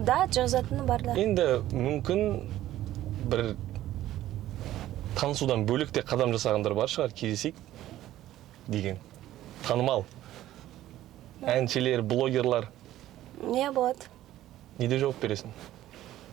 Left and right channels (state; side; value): quieter; left; 14.0 dB